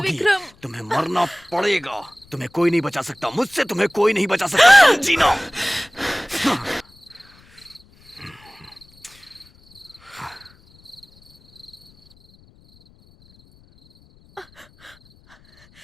विक्रम। तुम्हें मरना पड़ेगा। तुम्हें कोई नहीं बचा सकता, मुझसे तुम्हें कोई नहीं बचा सकता, समझी ना?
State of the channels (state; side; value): noise; left; rumble, 28 dB below the sound